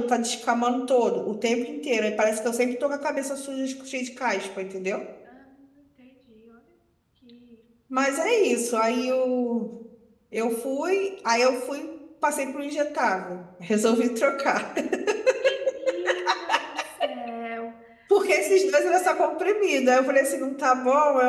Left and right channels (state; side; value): identical; both; correlation 1.00